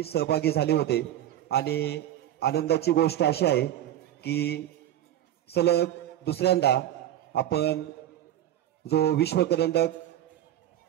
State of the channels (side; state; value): left; quieter; 12.2 dB